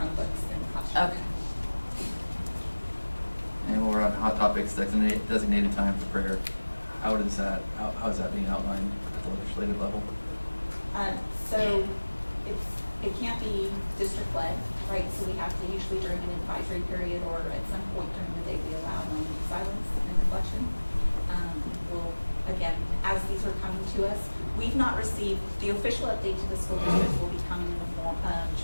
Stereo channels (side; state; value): both; inverted; correlation -1.00